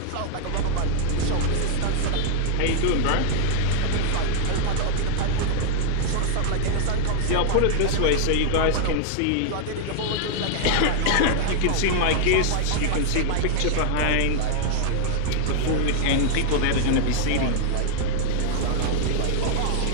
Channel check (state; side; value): different; both; correlation 0.00